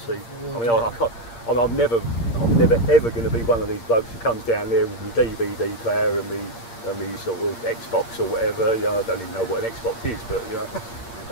see, I mean, I can't. I'm never ever going to be one of these blokes who comes down there with my DVD player and me sort of Xbox or whatever. You know, I don't even know what an Xbox is, but you know,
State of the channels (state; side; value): late; right; 8.6 ms